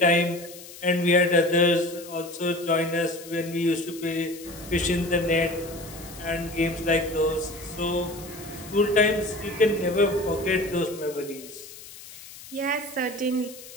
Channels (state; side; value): noise; left; hiss, 16 dB below the sound